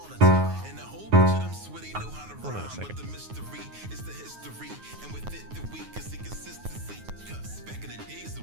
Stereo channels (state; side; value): late; left; 9.5 ms